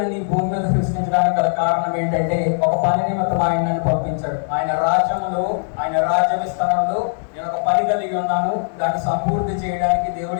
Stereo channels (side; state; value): right; silent; digital silence